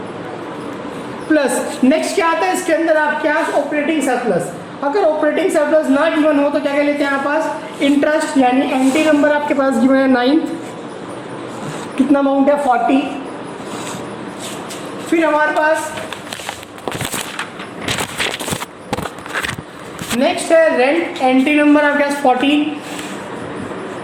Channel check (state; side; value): identical; both; correlation 1.00